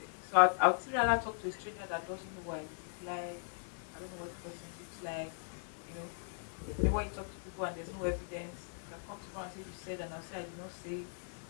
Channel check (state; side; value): silent; right; 52 dB below the other